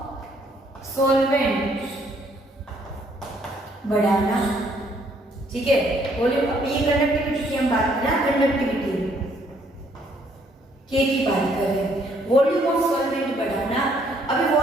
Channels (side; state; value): both; normal; correlation 0.67